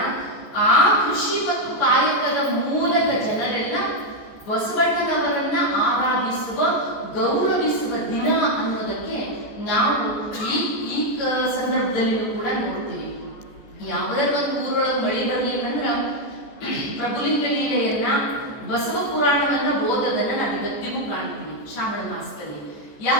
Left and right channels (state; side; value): late; right; 14 ms